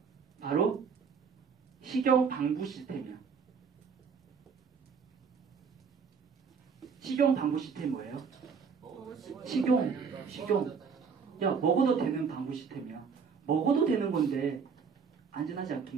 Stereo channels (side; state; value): left; quieter; 5.9 dB